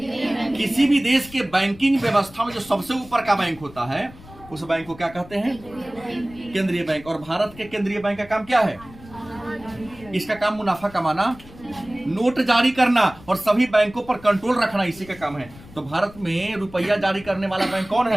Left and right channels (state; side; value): noise; left; rumble, 21 dB below the sound